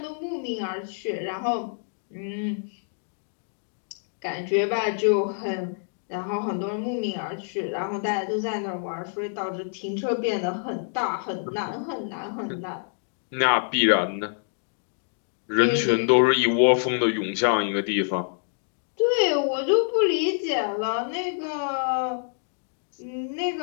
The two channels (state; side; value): silent; right; digital silence